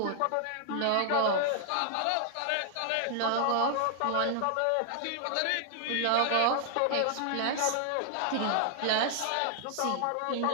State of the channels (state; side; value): different; both; correlation 0.00